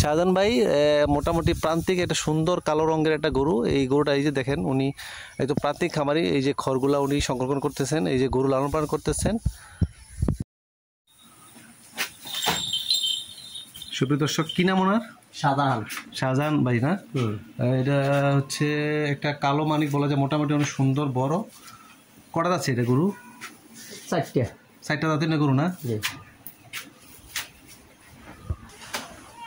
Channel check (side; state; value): both; identical; correlation 1.00